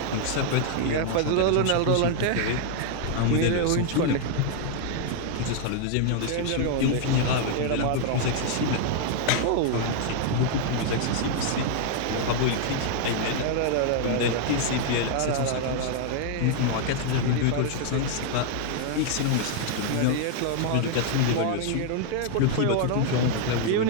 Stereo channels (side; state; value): both; different; correlation 0.00